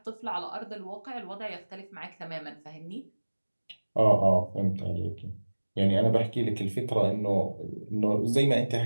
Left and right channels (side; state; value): both; inverted; correlation -1.00